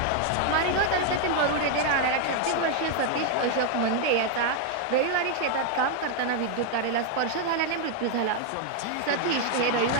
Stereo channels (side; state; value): both; different; correlation 0.00